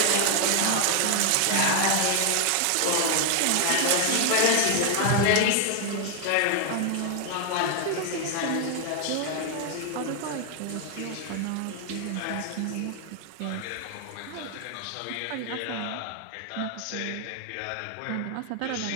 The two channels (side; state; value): both; different; correlation 0.01